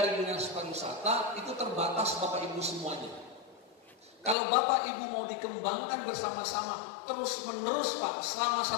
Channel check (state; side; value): drops out; right; at 4.4 s